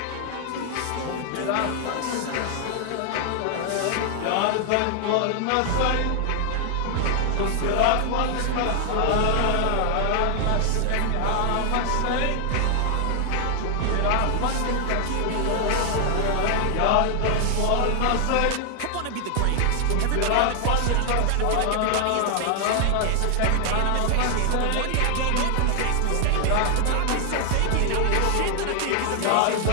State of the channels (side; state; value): both; different; correlation 0.00